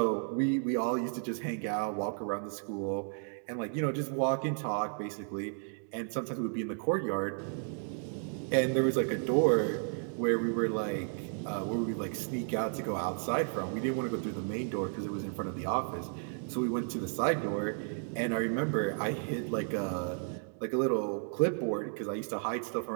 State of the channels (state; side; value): silent; left; 56 dB below the other